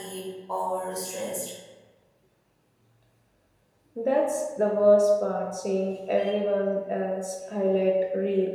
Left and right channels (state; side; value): identical; both; correlation 1.00